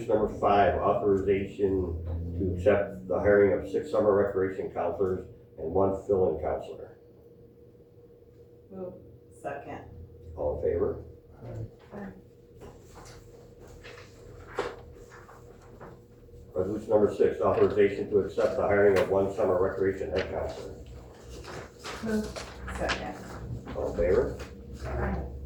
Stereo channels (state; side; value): identical; both; correlation 1.00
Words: number 5, authorization to accept the hiring of 6 summer recreation counselors and 1 fill-in counselor. Move. Second. All in favor? Resolution number 6, authorization to accept the hiring of 1 summer recreation head counselor. Move. Second. All in favor? Aye.